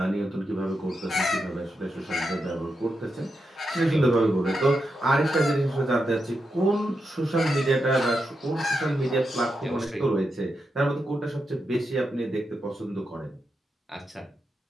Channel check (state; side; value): normal; both; correlation 0.86